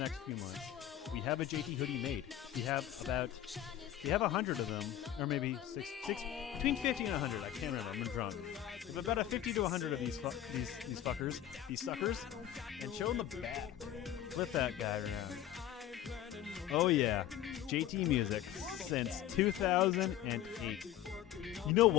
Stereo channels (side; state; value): right; quieter; 11.7 dB